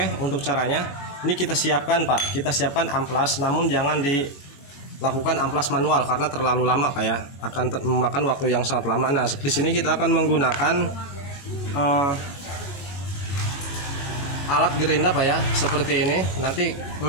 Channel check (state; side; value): late; right; 21 ms